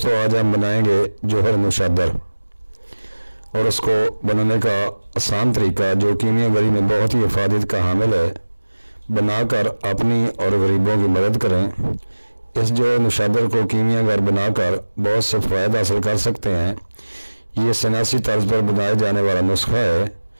आज हम बनाएंगे जोहर मुशद्दर और उसको बनाने का आसान तरीका जो कीमियागरी में बहुत ही इफादत का हामिल है, बनाकर अपनी और गरीबों की मदद करें। इस जोहर मुशद्दर को कीमियागर बनाकर बहुत से फ़ायदे हासिल कर सकते हैं। ये सनासी तर्ज पर बनाए जाने वाला नुस्खा है।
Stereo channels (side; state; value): both; inverted; correlation -1.00